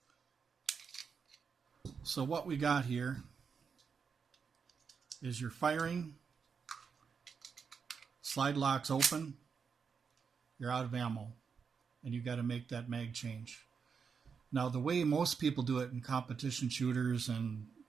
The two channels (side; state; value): left; quieter; 6.0 dB